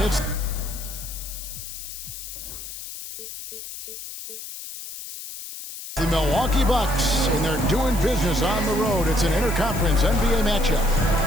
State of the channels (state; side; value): noise; left; hiss, 10 dB below the sound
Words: It's the Milwaukee Bucks, and they're doing business on the road. It's an interconference NBA matchup.